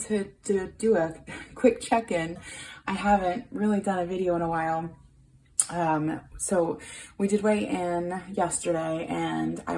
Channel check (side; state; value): both; identical; correlation 1.00